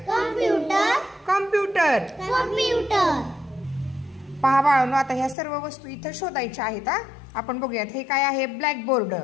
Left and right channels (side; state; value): right; drops out; at 5.4 s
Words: पहा बाळांनो, आता ह्या सर्व वस्तू इथं शोधायच्या आहेत। आपण बघूयात हे काय आहे। ब्लॅकबोर्ड,